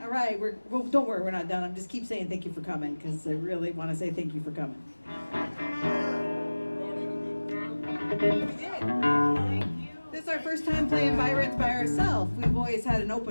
All right, well, don't worry, we're not done. I'm just keep saying thank you for coming because I really want to say thank you for coming. We did. Thank you. This is our first time playing Byron's by ourselves. We've always had an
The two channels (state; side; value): inverted; both; correlation -1.00